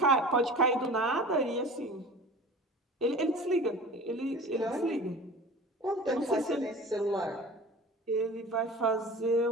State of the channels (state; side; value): normal; both; correlation 0.38